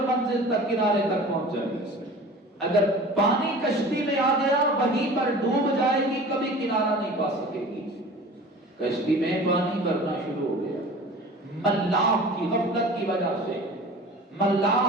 منزل تک، کنارے تک پہنچ جائے گی. اگر پانی کشتی میں آ گیا وہیں پر ڈوب جائے گی، کبھی کنارہ نہیں پا سکے گی. کشتی میں پانی بھرنا شروع ہو گیا، ملاح کی غفلت کی وجہ سے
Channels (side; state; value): both; normal; correlation 0.41